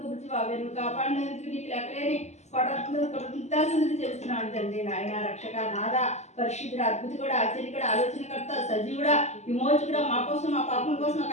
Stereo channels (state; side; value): late; right; 0.33 ms